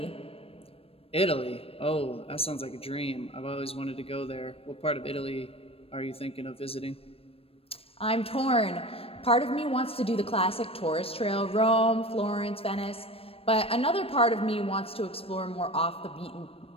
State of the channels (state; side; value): late; right; 0.28 ms